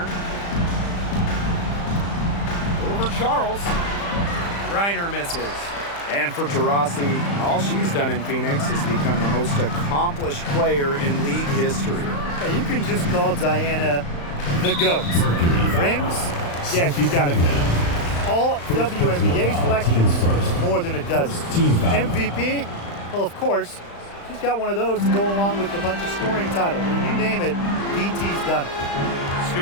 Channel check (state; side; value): late; right; 35 ms